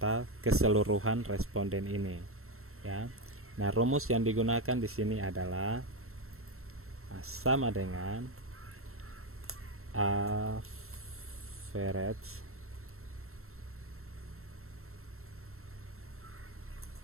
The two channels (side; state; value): left; late; 0.62 ms